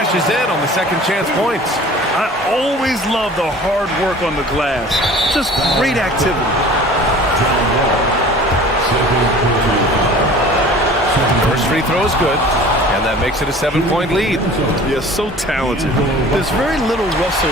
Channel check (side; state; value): both; normal; correlation 0.44